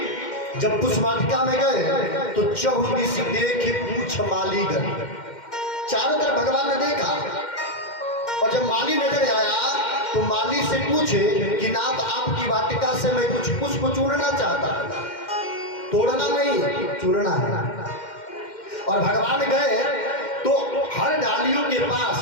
जब पुष्प वाटिका में गए तो चहुदिश देखे पूछ माली गए। चारों तरफ भगवान ने देखा और जब माली नजर आया तो माली से पूछे कि नाथ, आपकी वाटिका से मैं कुछ पुष्प चुनना चाहता हूं। तोड़ना नहीं, चुनना है। और भगवान गए तो हर डालियों के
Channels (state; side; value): late; right; 2.1 ms